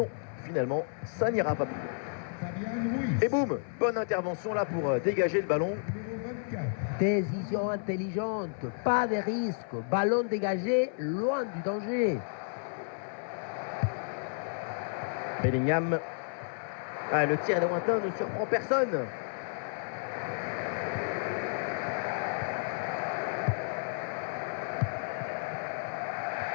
non, finalement, ça n'ira pas plus loin. Fabien Ruiz. Et boum, bonne intervention là pour dégager le ballon. Numéro 24. Décision intelligente, pas de risque, ballon dégagé, loin du danger. Bellingham. Ah, le tir lointain ne surprend personne.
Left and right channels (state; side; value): silent; right; 57 dB below the other